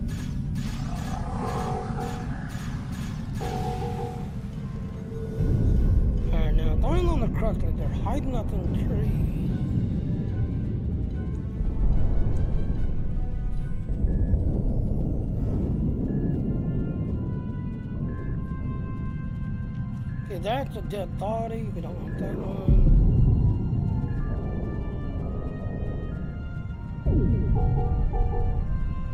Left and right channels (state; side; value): identical; both; correlation 1.00